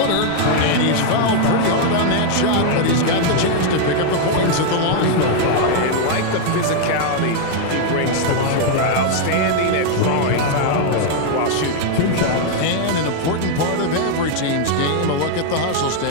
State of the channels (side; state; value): both; different; correlation 0.00